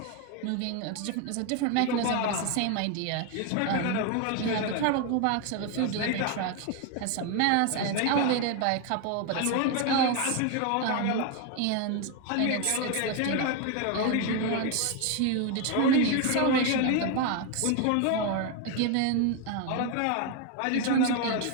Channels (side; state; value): both; different; correlation 0.01